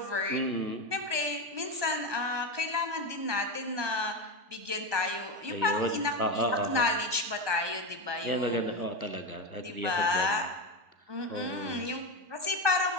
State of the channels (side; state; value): left; late; 1.2 ms